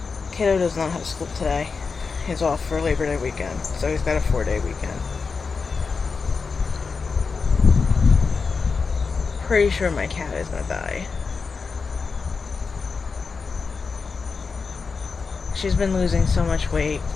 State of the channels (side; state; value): right; quieter; 4.9 dB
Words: Kiddo does not have school today. He's off for Labor Day weekend, so he's got a 4-day weekend. Pretty sure my cat is gonna die. She's been losing so much weight